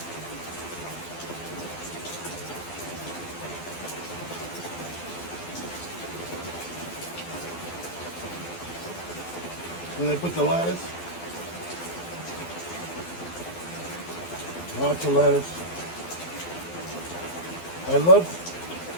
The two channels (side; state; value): right; late; 12 ms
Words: Then I put the lettuce. Lots of lettuce. I love